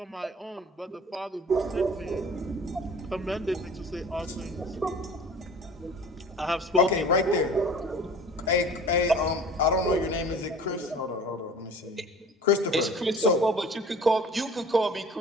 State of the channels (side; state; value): both; normal; correlation 0.44